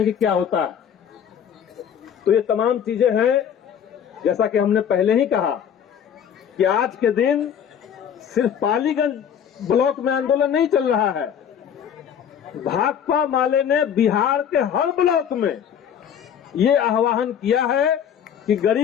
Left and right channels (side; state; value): right; quieter; 8.5 dB